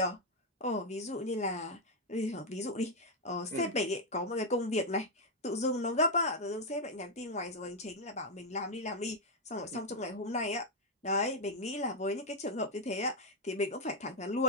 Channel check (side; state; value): both; normal; correlation 0.02